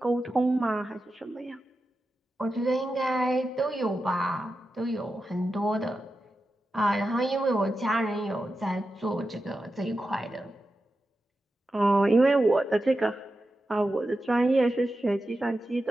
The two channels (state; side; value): normal; both; correlation 0.90